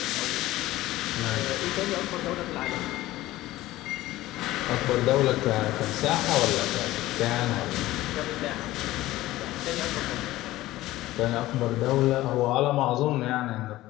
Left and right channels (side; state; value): right; quieter; 16.6 dB